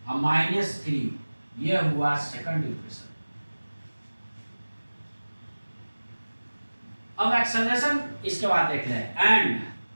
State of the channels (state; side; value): inverted; both; correlation -1.00